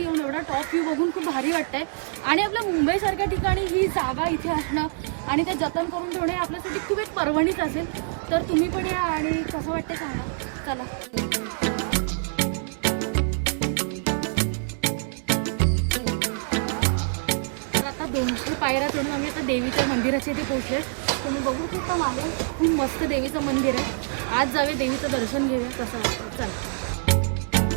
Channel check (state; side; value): silent; left; 61 dB below the other